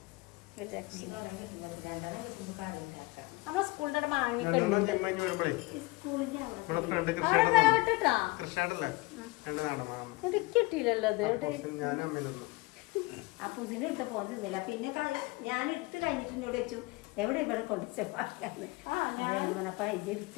നമ്മളെ സ്കൂളിന്റെ അവിടെ മാങ്ങൊക്കെ കിട്ടിയില്ലല്ലോ. അത് ആ പുതിന ഇട്ട് പോകുന്നില്ല. പിന്നെ ഞാൻ എടുത്ത് കഴിഞ്ഞിട്ട് വെച്ചു എവിടെ ഇവിടെ കൊണ്ടുവച്ചപ്പാക്കാന്ന്.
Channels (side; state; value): right; quieter; 23.7 dB